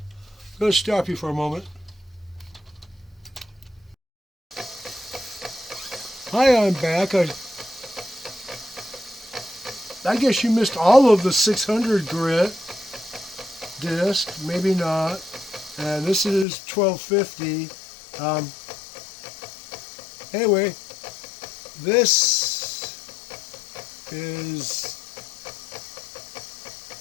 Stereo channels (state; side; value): drops out; right; at 16.4 s